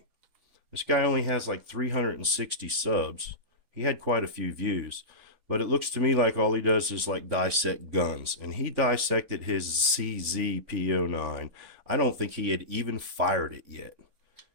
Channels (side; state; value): left; late; 3.5 ms